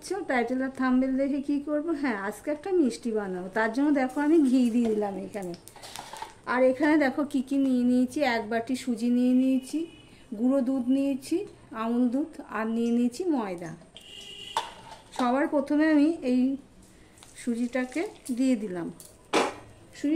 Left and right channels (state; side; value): identical; both; correlation 1.00